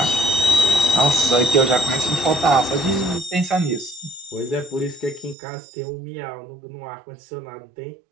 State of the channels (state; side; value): drops out; left; at 5.4 s